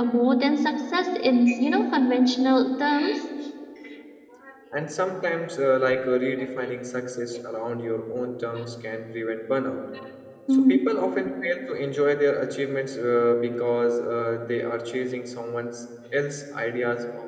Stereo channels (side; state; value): both; identical; correlation 1.00